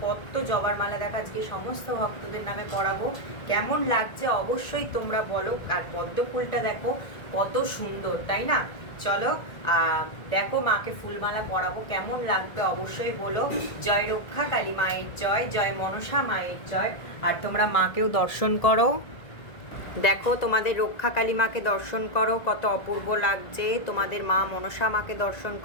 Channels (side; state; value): right; late; 1.9 ms